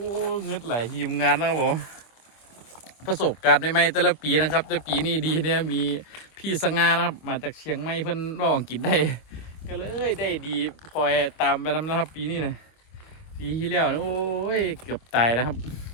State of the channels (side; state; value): right; late; 25 ms